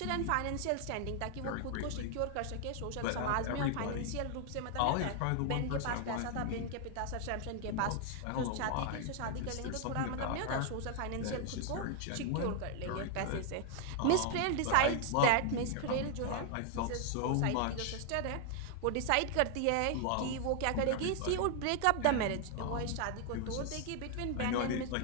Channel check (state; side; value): different; both; correlation 0.00